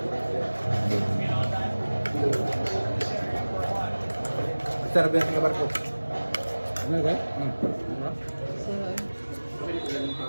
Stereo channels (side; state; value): both; inverted; correlation -1.00